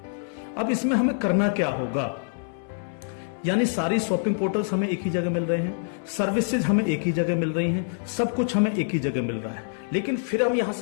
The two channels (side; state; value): right; silent; digital silence